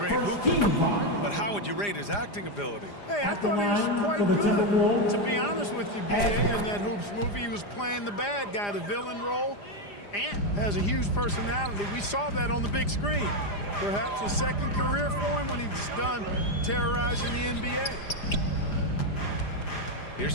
hooper, but how would you rate his acting ability? Hey, I thought he was quite good, to be honest with you, B.A. In that Hoops movie, he was playing the bad guy, the villain role, and has a huge personality. We saw that on the big screen. Perhaps a second career for him when he's done terrorizing the NBA. Here's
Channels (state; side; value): late; right; 4.9 ms